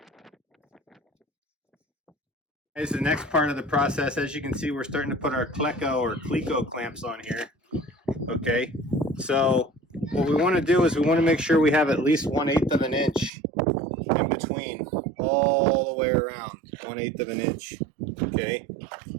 Here's the next part of the process. As you can see, we're starting to put our Cleco clamps on here. Okay, so what we want to do is we want to make sure we have at least 1/8 of an inch in between all the way around. 1/8 of an inch. Okay.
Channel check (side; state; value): left; drops out; at 13.3 s